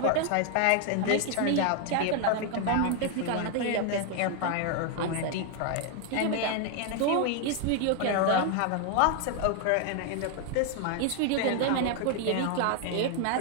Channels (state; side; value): different; both; correlation 0.00